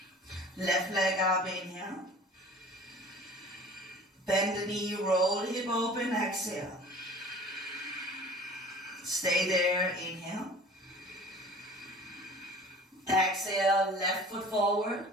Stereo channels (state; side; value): normal; both; correlation 0.44